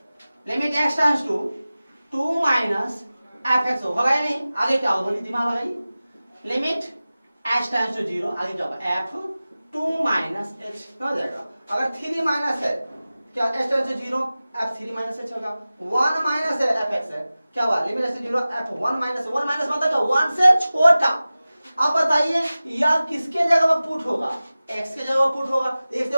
limit x tends to 2 minus f(x) होगा या नहीं, आगे क्या होगा बोलिए, दिमाग लगाइए, लिमिट x टेंड्स टू 0 आगे क्या होगा, f2 माइनस h हो जाएगा। अगर 3 माइनस है क्या, h tends to 0 f3 minus h होगा, 1 माइनस है f(x) है, क्या हुआ, limit x 0 f1 minus, 1 minus मतलब क्या, 1 से छोटा। अब बताइए यह किसके जगह पर पुट होगा, x के जगह पुट होगा, x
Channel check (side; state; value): both; inverted; correlation -0.97